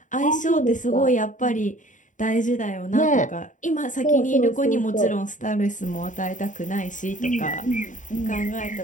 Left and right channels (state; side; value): late; right; 0.37 ms